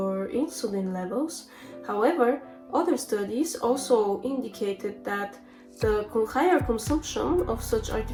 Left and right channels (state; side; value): identical; both; correlation 1.00